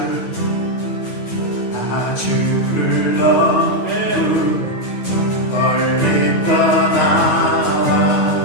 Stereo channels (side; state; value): right; late; 8.9 ms